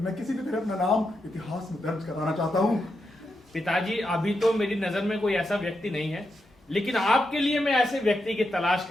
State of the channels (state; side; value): normal; both; correlation 0.85